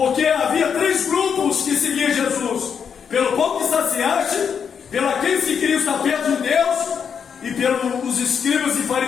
havia 3 grupos que seguiam Jesus: pelo pão que saciaste, pelo aqueles que queriam estar perto de Deus, e pelos escribas e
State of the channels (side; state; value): right; quieter; 7.0 dB